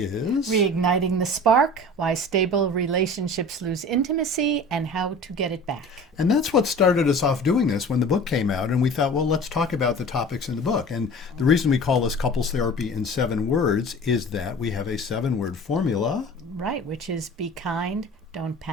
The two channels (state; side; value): normal; both; correlation 0.41